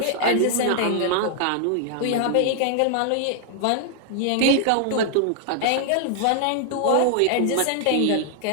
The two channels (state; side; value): different; both; correlation 0.00